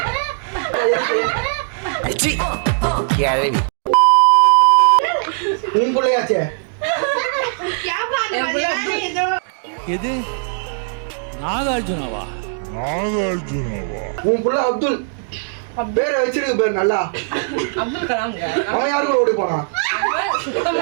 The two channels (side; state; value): left; silent; digital silence